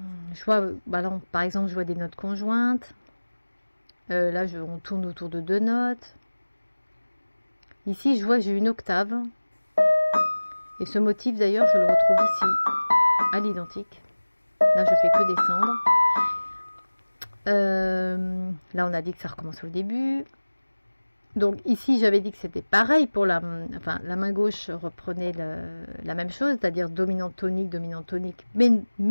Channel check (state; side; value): inverted; both; correlation -1.00